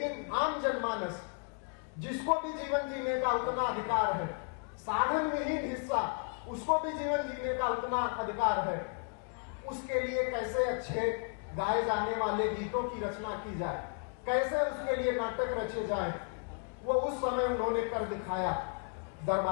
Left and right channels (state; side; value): quieter; right; 39.9 dB